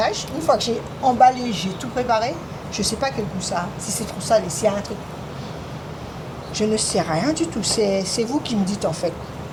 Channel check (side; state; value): both; identical; correlation 1.00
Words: Une fois que j'ai emballé, j'ai tout préparé, je ne sais pas quel goût ça a. Si c'est trop salé, s'il y a un truc. Je ne sais rien du tout. C'est vous qui me dites, en fait.